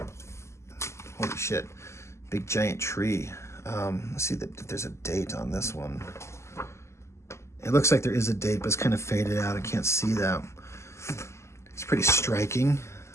Holy shit. Big giant tree. Let's see if there's a date on this one. It looks like there is a date, but it's kind of faded out. I can't see that. It's pretty striking.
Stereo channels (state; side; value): late; right; 0.13 ms